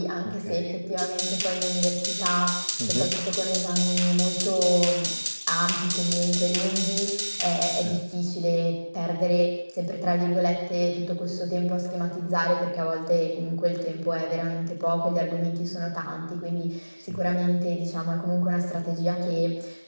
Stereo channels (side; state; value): both; inverted; correlation -1.00